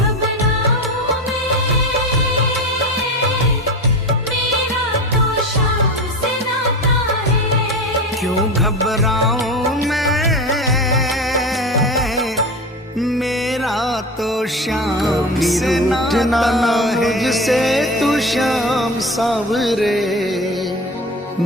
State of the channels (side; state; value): both; normal; correlation 0.28